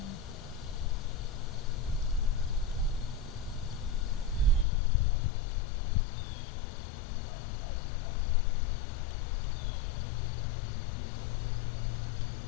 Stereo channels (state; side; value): drops out; right; at 4.7 s